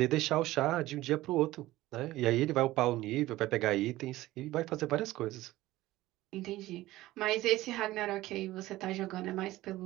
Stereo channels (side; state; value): left; quieter; 16.9 dB